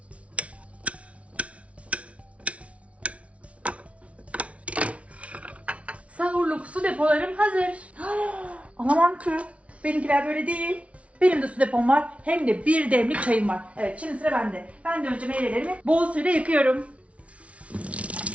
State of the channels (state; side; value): late; left; 0.063 ms